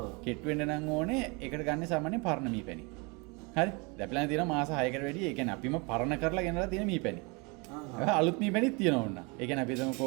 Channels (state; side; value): quieter; left; 29.7 dB